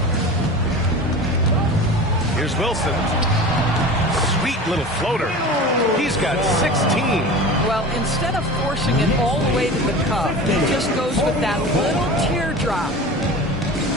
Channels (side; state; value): both; normal; correlation 0.34